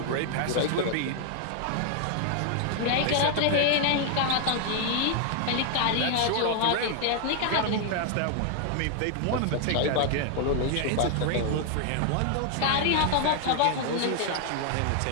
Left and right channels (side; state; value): both; different; correlation 0.00